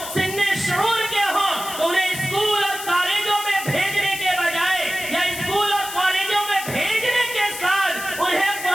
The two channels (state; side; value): noise; left; hiss, 9 dB below the sound